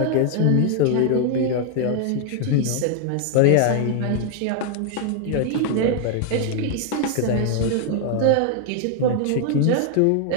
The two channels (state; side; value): different; both; correlation 0.00